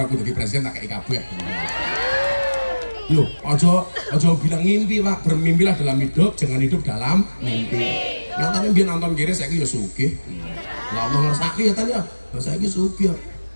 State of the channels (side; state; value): both; inverted; correlation -1.00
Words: aku dadi presiden tak kei kabeh. Loh, aja bilang ngimpi Pak, bermimpilah dalam hidup, jangan hidup dalam mimpi. Yang tadi biar nonton kiri, saya ya sugih. Lah Allah ngersaki ya tadi ya, saya ini sugih.